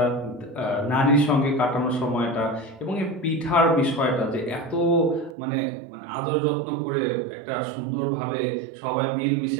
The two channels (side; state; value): left; drops out; at 5.4 s